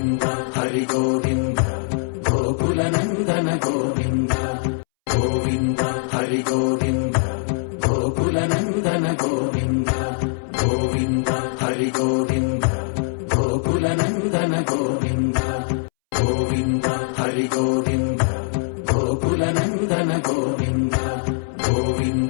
Hari Govinda Gokula Nandana Govinda Govinda Hari Govinda Gokula Nandana Govinda Govinda Hari Govinda Gokula Nandana Govinda Govinda Hari Govinda Gokula Nandana Govinda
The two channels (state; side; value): silent; right; 65 dB below the other